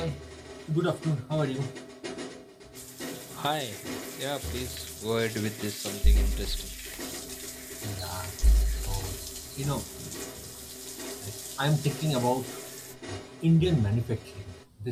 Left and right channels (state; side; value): identical; both; correlation 1.00